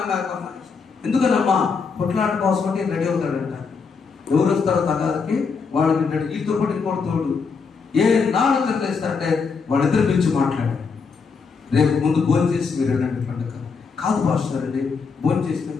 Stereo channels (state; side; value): quieter; right; 5.2 dB